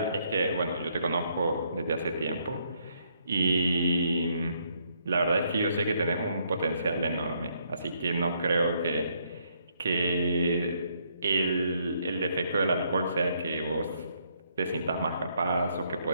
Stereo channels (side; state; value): both; inverted; correlation -0.72